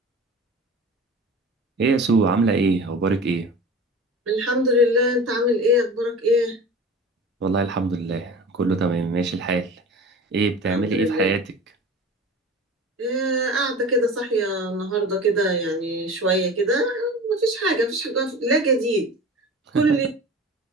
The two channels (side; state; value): both; normal; correlation 0.36